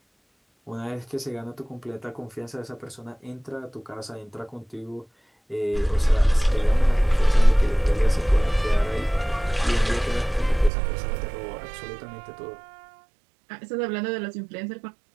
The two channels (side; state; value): left; drops out; at 10.7 s